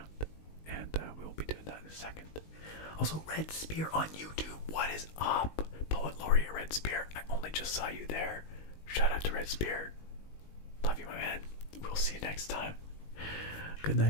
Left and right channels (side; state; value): right; late; 19 ms